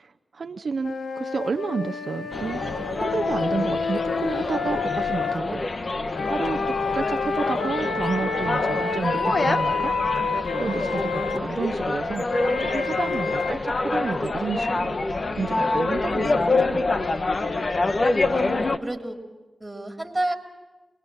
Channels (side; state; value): both; normal; correlation 0.88